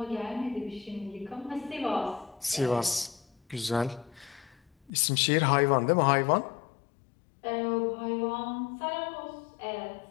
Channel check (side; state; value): right; drops out; at 4.9 s